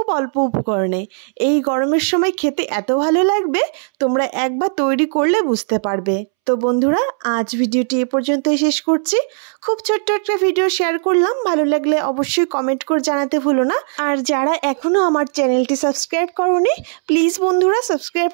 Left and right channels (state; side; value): silent; left; 68 dB below the other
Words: অল্প উপকরণে। এই গরমের সময় খেতে এত ভালো লাগবে, তোমরা একবার তৈরি করলে বুঝতে পারবে। তো বন্ধুরা, আজ ভিডিওটি এ পর্যন্তই শেষ করছি। খুব ছোট্ট একটা ভিডিও শেয়ার করলাম, ভালো লাগলে অবশ্যই কমেন্ট করে জানাতে ভুলো না। আর যারা এখনও আমার চ্যানেলটি সাবস্ক্রাইব করোনি, প্লিজ বন্ধুরা সাবস্ক্রাইব